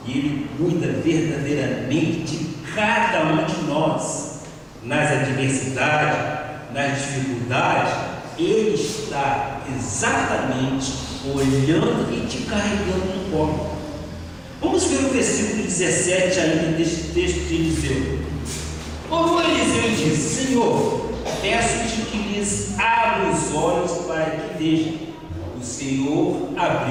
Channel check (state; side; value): identical; both; correlation 1.00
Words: e Ele cuida verdadeiramente de cada um de nós, nas adversidades, nas dificuldades. Ele está exatamente olhando e te carregando no colo. Vamos ver o versículo 17 ainda deste texto de Eliseu. Orou Eliseu e disse: Senhor, peço-te que lhes abra os olhos para que vejam. O Senhor